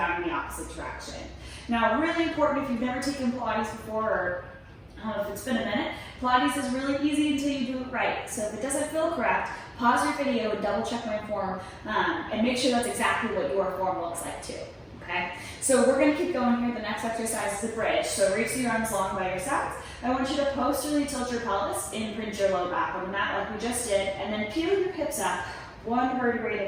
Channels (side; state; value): both; identical; correlation 1.00